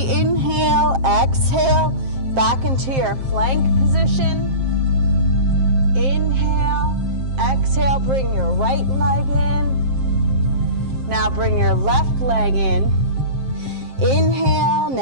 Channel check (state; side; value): late; left; 7.6 ms